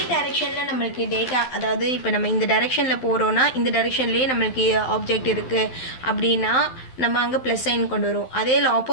டைரெக்ஷனில் நம்மளுக்கு டேட்டா, அதாவது இப்போ நம்ம இந்த டைரெக்ஷனில் போகிறோன்னா இந்த டைரெக்ஷன்லேயே நம்மளுக்கு ஆப்ஜெக்ட் இருக்குது அப்படின்னா நம்ம அங்கே ப்ளஸ் சைன் கொண்டு வரும். அதே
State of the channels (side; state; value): right; late; 12 ms